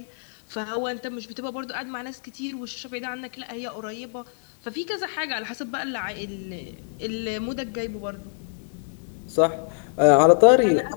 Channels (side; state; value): right; silent; digital silence